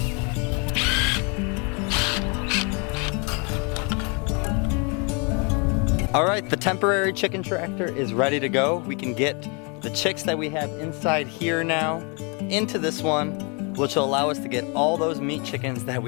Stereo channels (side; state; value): right; quieter; 33.4 dB